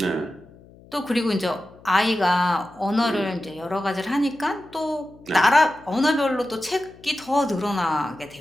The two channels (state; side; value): noise; left; hum, 24 dB below the sound